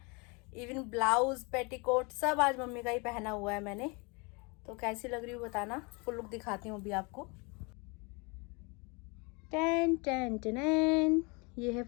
इवन ब्लाउज पेटीकोट सब आज मम्मी का ही पहना हुआ है मैंने। तो कैसी लग रही हूँ बताना। फुल लुक दिखाती हूँ अभी आपको। टेन टेन टेन, ये है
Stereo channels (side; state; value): right; quieter; 29.8 dB